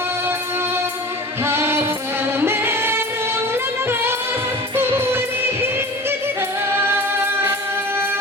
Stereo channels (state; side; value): normal; both; correlation 0.37